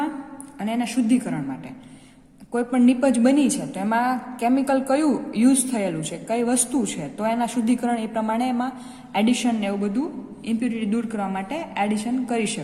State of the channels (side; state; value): both; identical; correlation 1.00